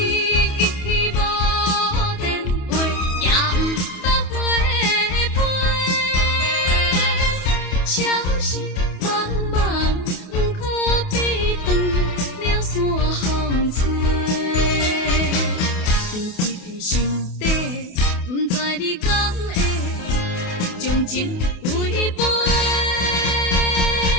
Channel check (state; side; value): late; right; 28 ms